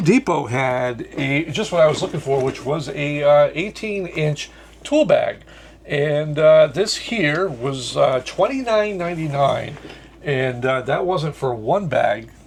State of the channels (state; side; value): identical; both; correlation 1.00